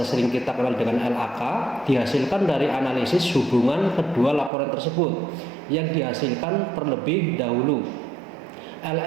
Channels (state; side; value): drops out; left; at 4.5 s